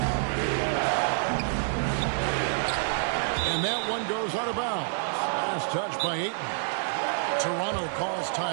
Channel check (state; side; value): silent; left; 60 dB below the other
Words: And that one goes out of bounds. Last touch by Ayton. Toronto calls